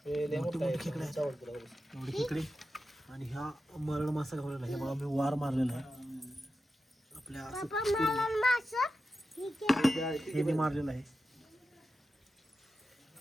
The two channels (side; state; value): both; normal; correlation 0.91